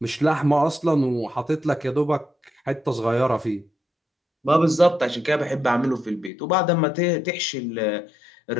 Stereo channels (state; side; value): drops out; right; at 6.3 s